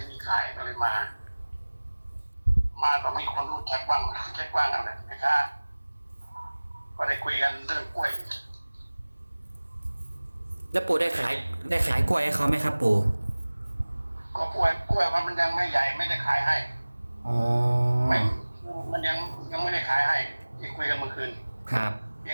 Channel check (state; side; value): inverted; both; correlation -1.00